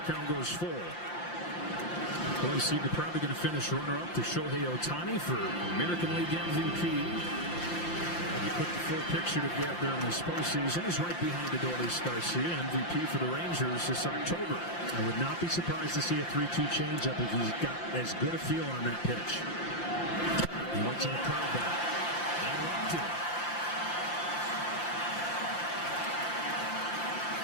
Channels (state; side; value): late; right; 5.8 ms